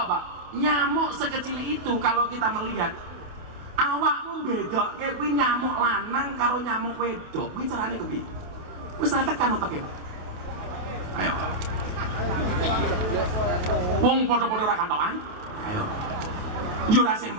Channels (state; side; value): late; left; 28 ms